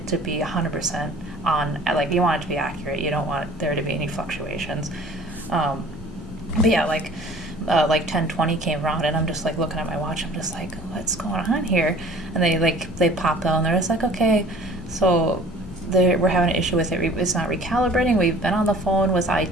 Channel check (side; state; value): both; normal; correlation 0.49